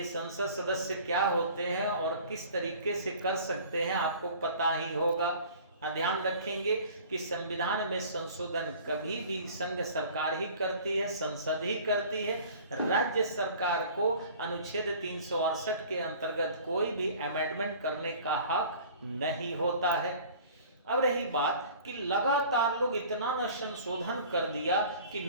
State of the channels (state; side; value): inverted; both; correlation -0.46